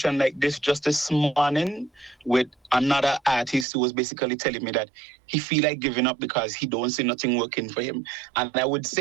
like this just this morning with another artist who was basically telling me that he feel like giving up because he don't see nothing working for him. And I would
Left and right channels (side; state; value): left; drops out; at 3.7 s